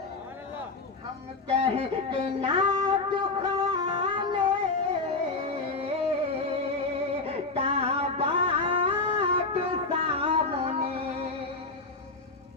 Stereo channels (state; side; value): quieter; right; 3.6 dB